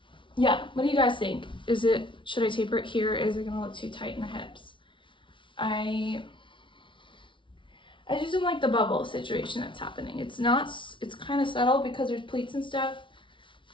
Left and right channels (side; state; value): right; late; 0.24 ms